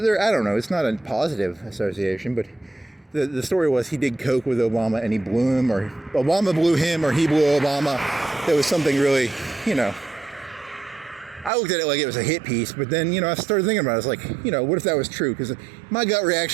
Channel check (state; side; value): drops out; left; at 11.5 s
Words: I don't know. It's not a positive association, but the story was he did coke with Obama and he blew him, or Obama blew him, or he blew Obama. There was something really, you know. I looked at it like it was a hit piece, but then, you know, I started thinking about it. I was like, you know, what if that was true? Because my gut